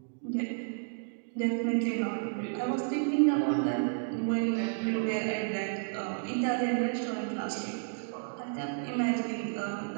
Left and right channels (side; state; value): left; silent; digital silence